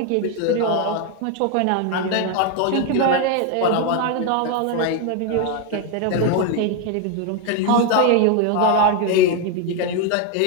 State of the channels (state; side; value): different; both; correlation 0.02